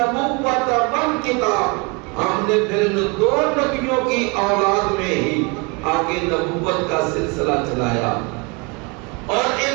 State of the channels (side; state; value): left; quieter; 30.1 dB